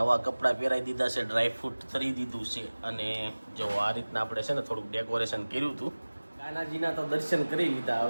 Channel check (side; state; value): both; inverted; correlation -1.00